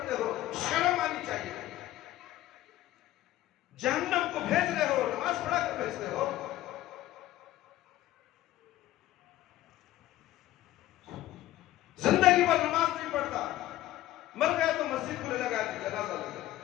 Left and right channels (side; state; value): right; quieter; 14.8 dB